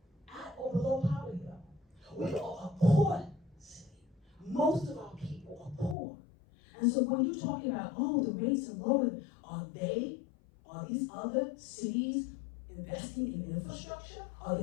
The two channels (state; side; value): drops out; right; at 6.0 s